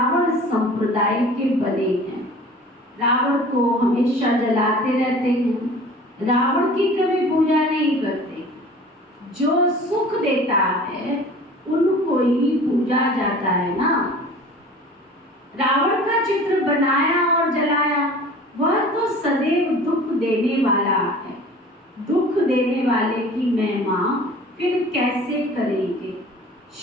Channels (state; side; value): normal; both; correlation 0.44